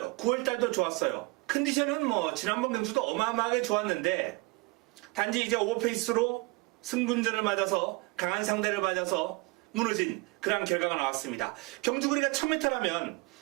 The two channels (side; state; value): left; quieter; 25.1 dB